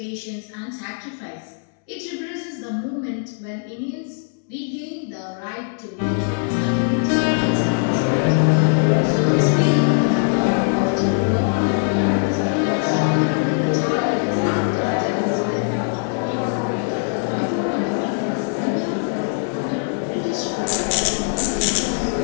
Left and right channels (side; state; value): right; silent; 62 dB below the other